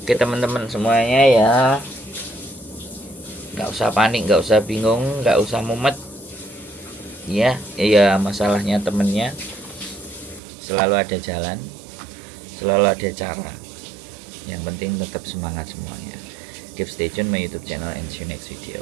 Oke teman-teman semuanya ya, nggak usah panik, nggak usah bingung, nggak usah mumet ya. Ya masalahnya temennya selalu ada jalan, selalu ada cara. Yang penting tetap semangat semuanya. Keep stay tune my YouTube channel and see you next video.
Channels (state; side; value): drops out; left; at 10.4 s